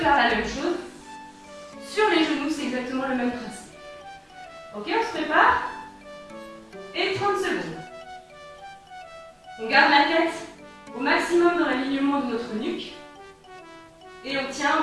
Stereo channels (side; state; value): both; identical; correlation 1.00